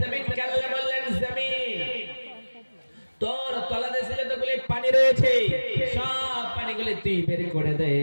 জমিনকে আল্লাহ বললেন, জমিন তোর তলাদেশে যতগুলি পানি রয়েছে সব পানিগুলি তুই বের করে দে।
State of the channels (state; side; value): inverted; both; correlation -1.00